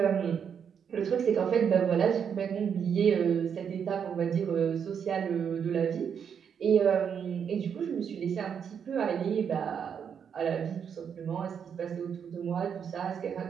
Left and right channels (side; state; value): left; quieter; 7.5 dB